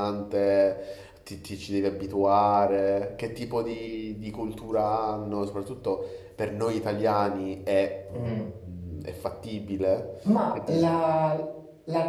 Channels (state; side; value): identical; both; correlation 1.00